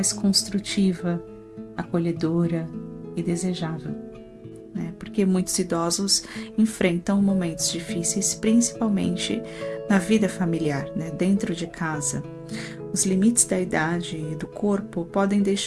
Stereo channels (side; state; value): both; identical; correlation 1.00